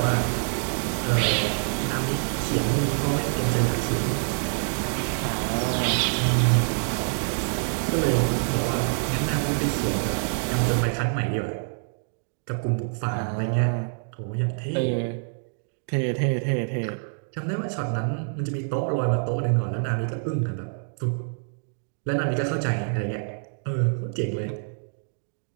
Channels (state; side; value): silent; left; digital silence